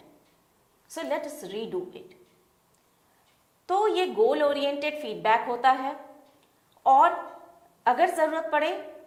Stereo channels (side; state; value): both; identical; correlation 1.00